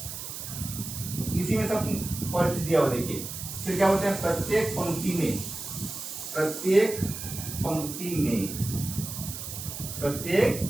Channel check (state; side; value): noise; right; hiss, 8 dB below the sound